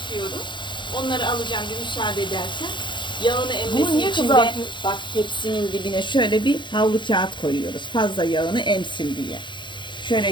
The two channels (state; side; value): late; right; 0.23 ms